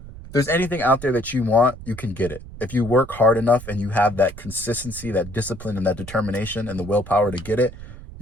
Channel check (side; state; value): right; noise; rumble, 14 dB below the sound